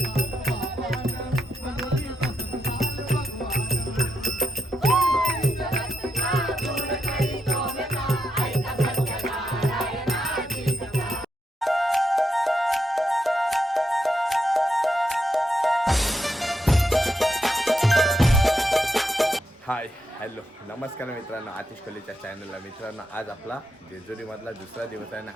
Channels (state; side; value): normal; both; correlation 0.83